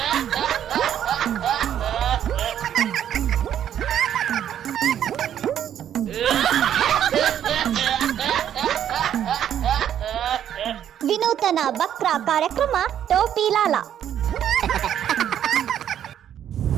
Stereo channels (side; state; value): left; quieter; 10.0 dB